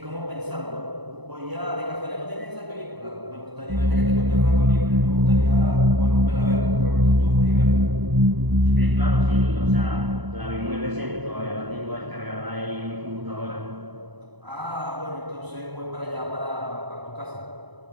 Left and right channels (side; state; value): left; late; 1.0 ms